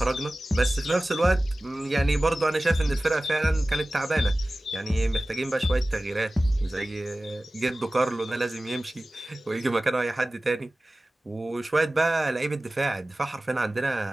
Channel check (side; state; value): both; normal; correlation 0.97